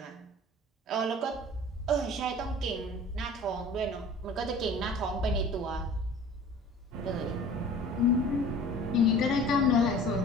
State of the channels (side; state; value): both; normal; correlation 0.44